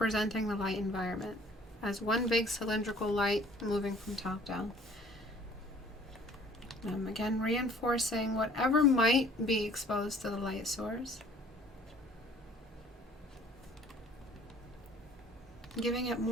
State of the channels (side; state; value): both; normal; correlation 0.54